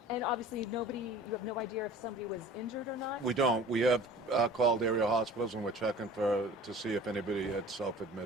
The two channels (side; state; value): both; normal; correlation 0.44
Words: And obviously you have no idea if somebody was injured or not? We don't. We have called area hospitals, and we're checking to see if anybody had